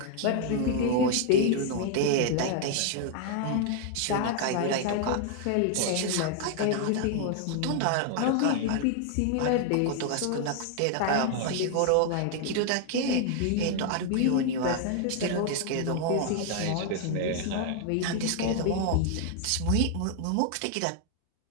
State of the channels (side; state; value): both; different; correlation 0.00